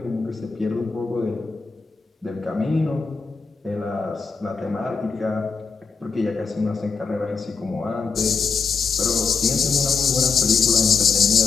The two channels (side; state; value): right; quieter; 5.0 dB